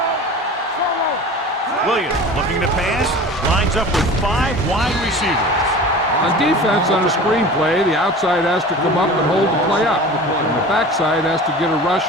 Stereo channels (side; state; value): both; normal; correlation 0.37